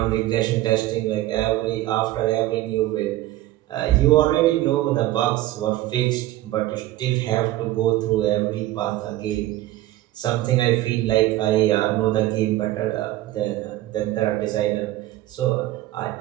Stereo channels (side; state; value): left; quieter; 15.7 dB